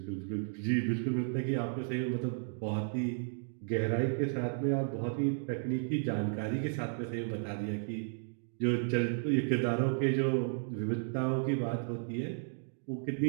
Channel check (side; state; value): left; silent; digital silence